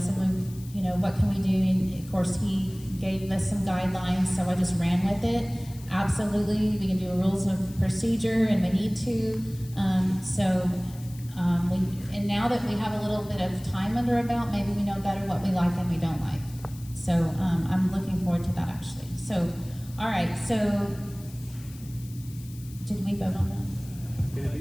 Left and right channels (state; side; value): noise; left; hiss, 21 dB below the sound